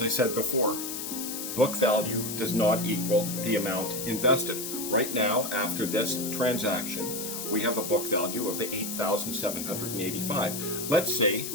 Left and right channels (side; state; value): left; noise; hiss, 5 dB below the sound